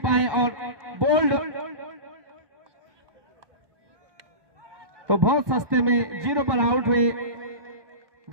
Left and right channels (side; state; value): left; late; 1.8 ms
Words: और बोल्ड, तो बहुत सस्ते में 0 पर आउट हुए